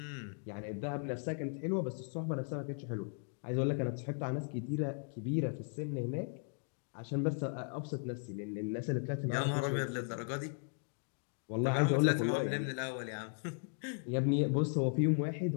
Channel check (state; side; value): silent; right; 53 dB below the other